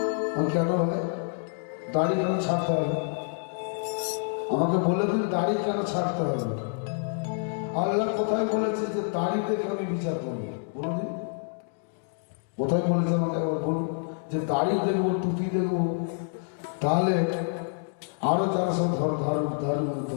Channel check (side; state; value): right; silent; digital silence